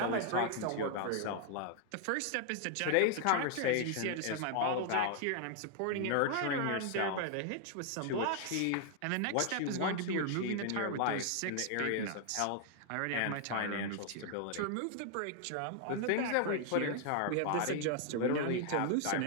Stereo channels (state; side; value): different; both; correlation 0.00